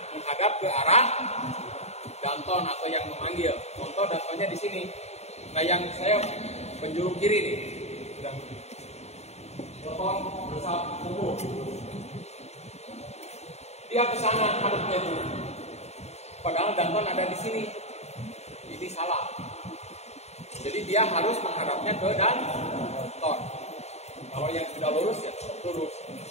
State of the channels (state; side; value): late; right; 0.31 ms